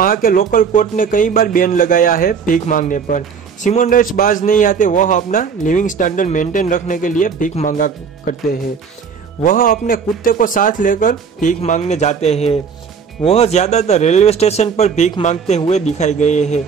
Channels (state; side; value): quieter; left; 6.3 dB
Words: के लोकल कोर्ट ने कई बार बैन लगाया है भीख मांगने पर। सिमोन राइट्स बाज नहीं आते। वह अपना लिविंग स्टैंडर्ड मेंटेन रखने के लिए भीख मांगा करते हैं। वह अपने कुत्ते को साथ लेकर भीख मांगने जाते हैं। वह ज्यादातर रेलवे स्टेशन पर भीख मांगते हुए दिखाई गए हैं,